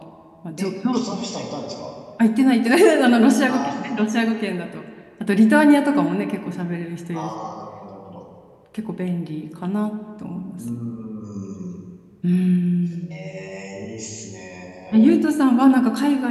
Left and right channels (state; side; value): identical; both; correlation 1.00